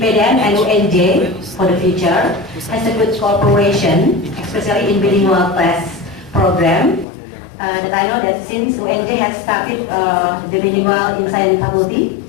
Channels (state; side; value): drops out; right; at 7.1 s